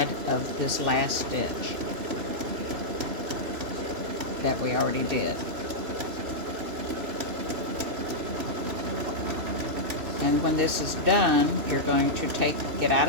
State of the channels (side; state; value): left; late; 2.6 ms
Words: of this last stitch that we already did. And when this is done, you're going to get out